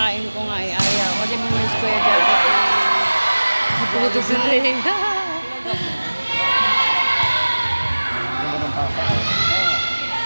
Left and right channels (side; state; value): both; inverted; correlation -1.00